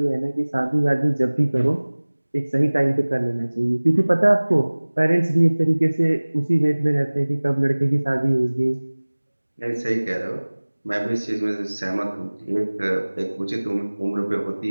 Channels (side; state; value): both; inverted; correlation -1.00